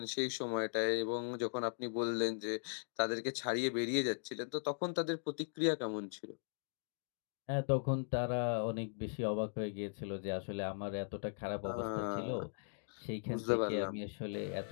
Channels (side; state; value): right; silent; digital silence